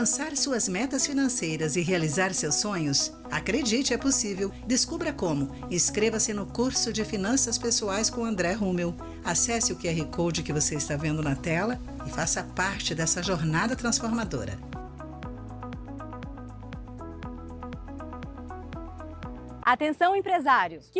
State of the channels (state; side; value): identical; both; correlation 1.00